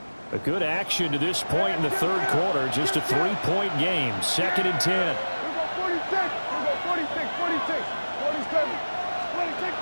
A good action to this point in the third quarter. Just a 3-point game. 2nd and 10. 46, 47, 26.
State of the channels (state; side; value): inverted; both; correlation -1.00